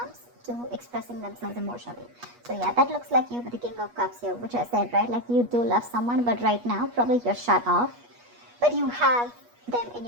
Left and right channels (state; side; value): late; left; 8.3 ms